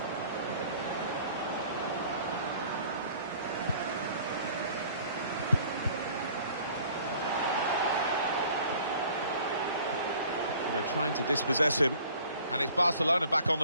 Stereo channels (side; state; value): both; inverted; correlation -0.52